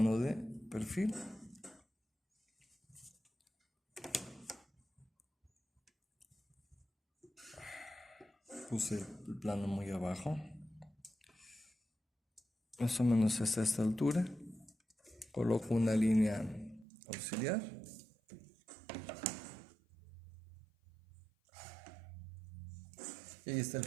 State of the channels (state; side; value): drops out; left; at 16.9 s